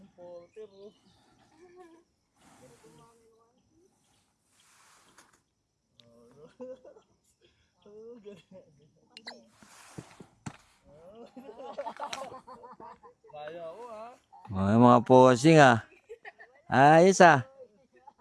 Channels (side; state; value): both; identical; correlation 1.00